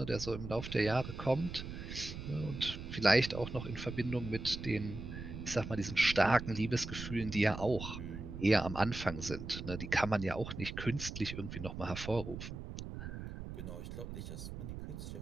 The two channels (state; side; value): noise; right; rumble, 8 dB below the sound